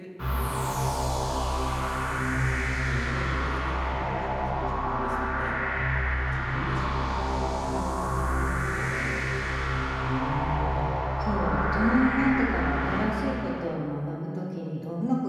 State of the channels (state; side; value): identical; both; correlation 1.00